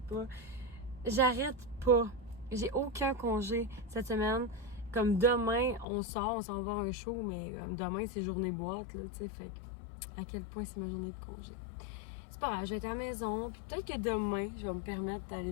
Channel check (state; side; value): drops out; right; at 5.9 s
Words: pas. J'arrête pas. J'ai aucun congé cette semaine. Comme demain, on s'en va voir un show, mais comme demain, c'est journée boîte, là, tu sais. Fait que, à quel point c'est ma journée de congé. C'est pas grave, je vais être à la maison, puis peut-être que demain, je vais me permettre d'aller